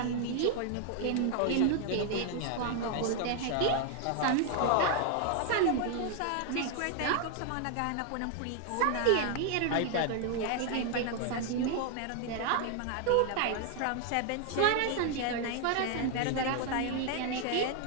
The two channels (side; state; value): both; different; correlation 0.00